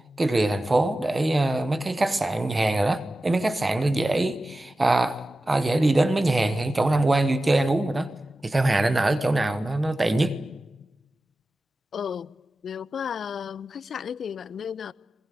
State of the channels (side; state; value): both; normal; correlation 0.94